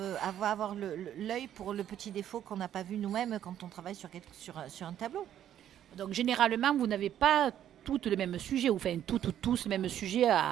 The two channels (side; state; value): left; quieter; 10.8 dB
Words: va avoir l'œil pour le petit défaut qu'on n'a pas vu nous-mêmes quand on travaille sur un tableau. Donc généralement, vous n'avez pas toutes le même sujet, ou enfin tous le même sujet